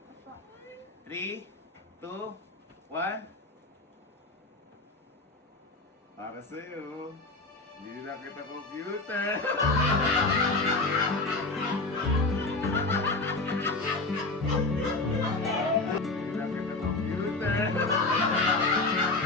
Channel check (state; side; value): quieter; right; 3.3 dB